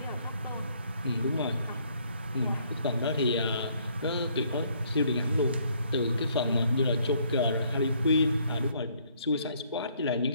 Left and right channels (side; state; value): both; inverted; correlation -0.66